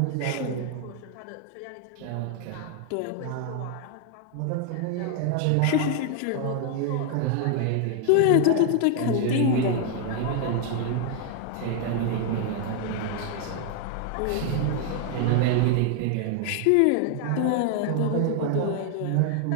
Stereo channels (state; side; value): different; both; correlation 0.00